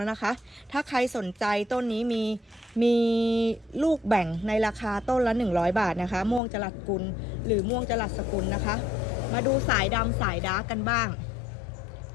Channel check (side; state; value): right; drops out; at 6.4 s